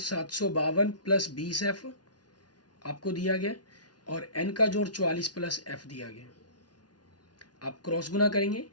प्लस 20 एफ आपको दिया गया, और एन का जोड़ 44 प्लस एफ दिया गया। आप क्रॉस गुना करेंगे,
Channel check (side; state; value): right; late; 0.69 ms